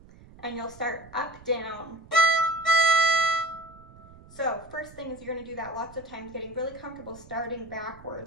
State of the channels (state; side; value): noise; right; rumble, 22 dB below the sound